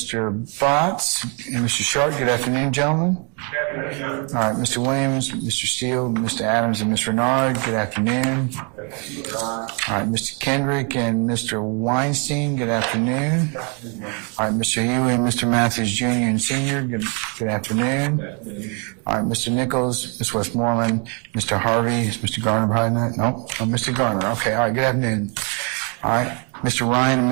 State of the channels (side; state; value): left; quieter; 36.2 dB